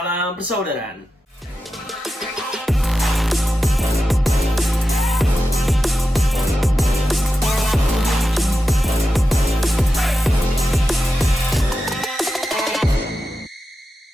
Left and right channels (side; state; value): both; normal; correlation 0.91